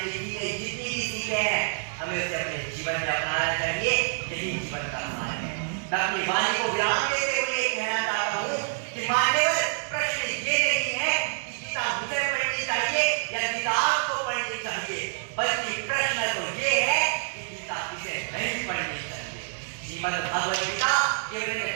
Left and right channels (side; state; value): left; silent; 60 dB below the other